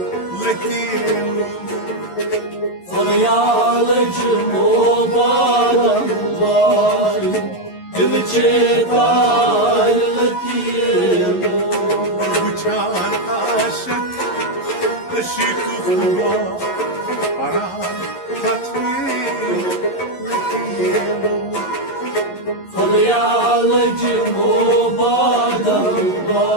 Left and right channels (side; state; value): right; late; 11 ms